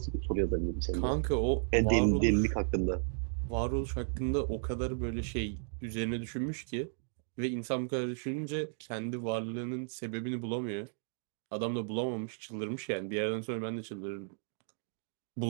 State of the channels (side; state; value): left; silent; digital silence